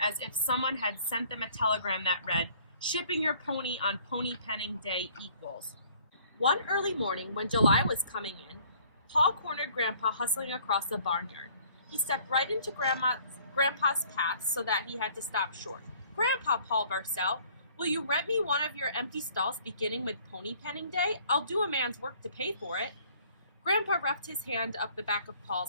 as if someone had sent them a telegram that read, "Shipping your pony on pony penning day equals." One early morning, when July was coming in, Paul cornered Grandpa hustling across the barnyard. He stepped right into Grandpa's path so that he had to stop short. "Grandpa," Paul burst out, "will you rent me one of your empty stalls beginning with pony penning day? I'll do a man's work to pay for it." Grandpa roughed his hand up the back of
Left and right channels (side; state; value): both; inverted; correlation -0.57